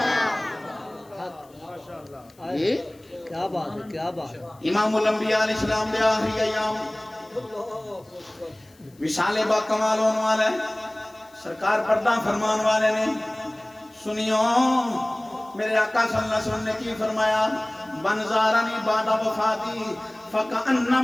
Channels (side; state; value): left; noise; hiss, 30 dB below the sound